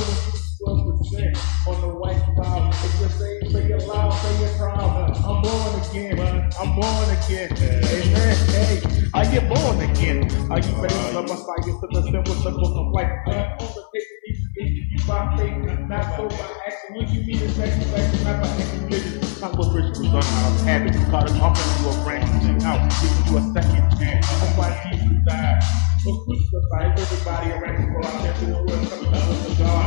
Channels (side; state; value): right; silent; digital silence